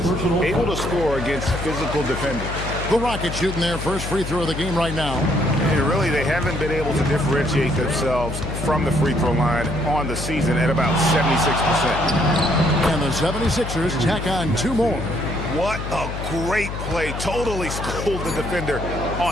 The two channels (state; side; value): noise; left; hum, 6 dB below the sound